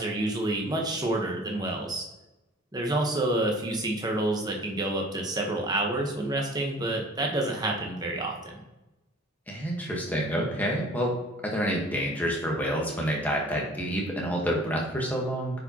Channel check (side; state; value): both; normal; correlation 0.48